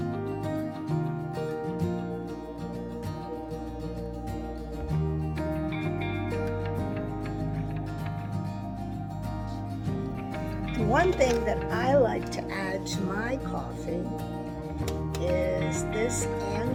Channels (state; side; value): identical; both; correlation 1.00